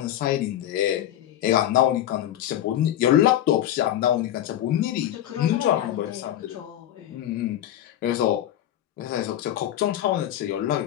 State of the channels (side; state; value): right; quieter; 12.0 dB